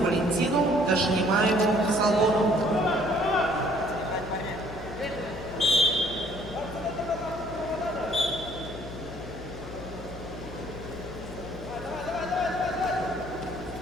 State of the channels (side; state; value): left; noise; hum, 13 dB below the sound